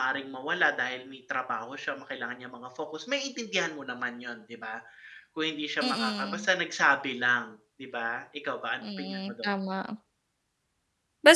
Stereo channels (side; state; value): both; identical; correlation 1.00